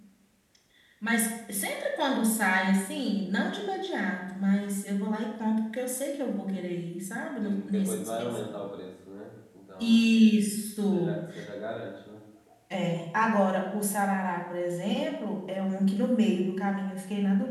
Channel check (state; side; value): identical; both; correlation 1.00